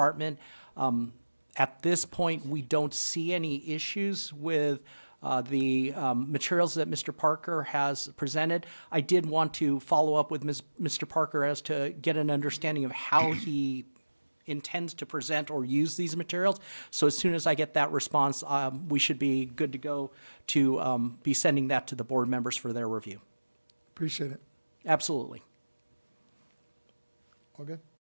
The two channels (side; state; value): both; inverted; correlation -1.00